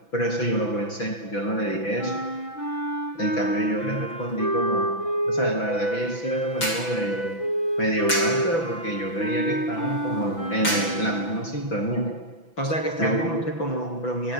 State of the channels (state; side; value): late; right; 6.0 ms